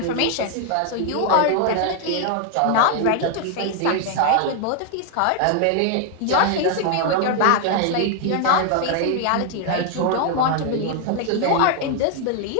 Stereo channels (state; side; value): different; both; correlation 0.00